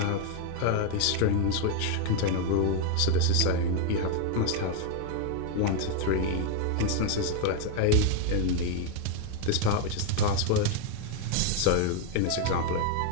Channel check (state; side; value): different; both; correlation 0.01